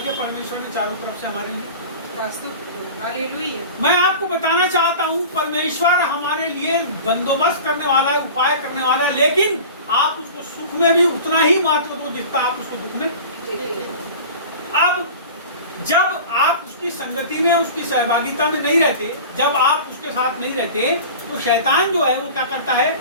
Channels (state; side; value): inverted; both; correlation -0.37